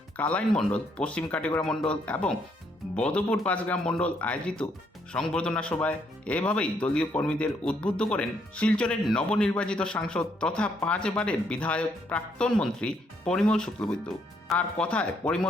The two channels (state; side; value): normal; both; correlation 0.72